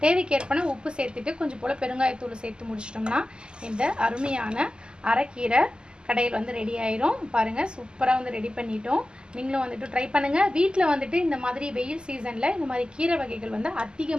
தேவைக்கேற்பன உப்பு சேர்த்துட்டு கொஞ்சம் போல் பெருங்காயத்தூள் சேர்த்து முடிச்சிட்டோம்னா இந்த அருமையான அரைக்கீரை கடையில் வந்து ரெடி ஆயிரும். பாருங்கள் சூப்பராக வந்து ரெடி பண்ணிட்டோம். நீங்களும் வந்துட்டு ட்ரை பண்ணுங்கள். வீட்டில் வந்துட்டு இந்த மாதிரி வெயில் சீசனில் இந்த மாதிரி கீரை வகைகள் வந்து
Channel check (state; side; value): late; left; 0.047 ms